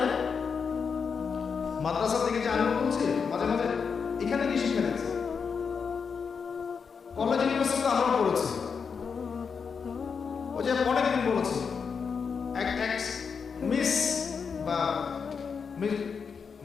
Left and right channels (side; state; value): right; quieter; 5.9 dB